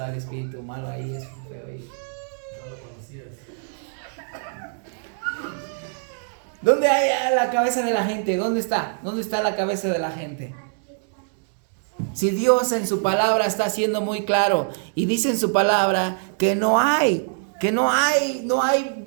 el espíritu malo ahí es feo. ¿Dónde hay la cabeza de la gente? ¿Dónde está? ¿Dónde está la cabeza de la gente? Si Dios en su palabra está siendo muy claro y dice en su palabra que no hay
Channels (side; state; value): left; silent; digital silence